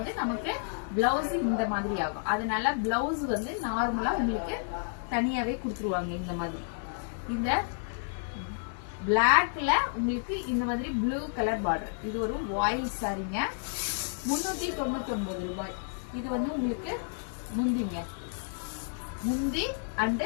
நமக்கு பிளவுஸ் இந்த மாதிரி ஆகும். அதனால பிளவுஸ் நார்மலா உங்களுக்கு தனியாவே கொடுத்துருவாங்க. இந்த மாதிரி இந்த பிளாக்ல உங்களுக்கு இந்த மாதிரி ப்ளூ கலர் பார்டர். இது ஒரு வாயில் சாரிங்க, 399 ரூபாய். இது உங்களுக்கு முந்தி அண்ட்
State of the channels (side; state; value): right; silent; digital silence